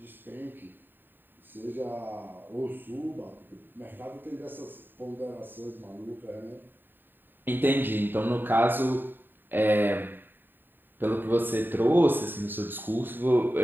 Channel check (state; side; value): late; left; 0.093 ms